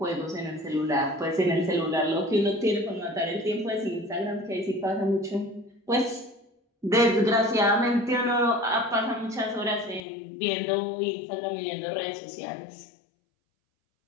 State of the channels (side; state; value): right; drops out; at 10.0 s